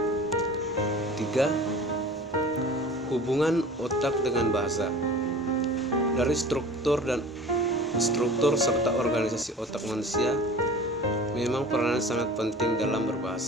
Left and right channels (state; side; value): normal; both; correlation 0.42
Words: 3. Hubungan otak dengan bahasa. Dari struktur serta organisasi otak manusia memang peranan sangat penting dalam